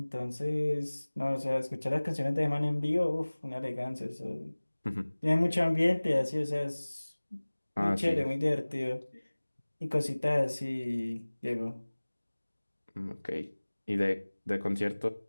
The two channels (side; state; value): both; inverted; correlation -1.00